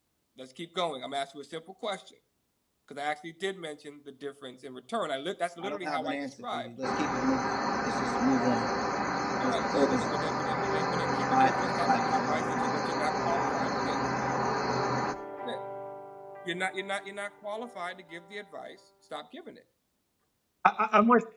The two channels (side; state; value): both; identical; correlation 1.00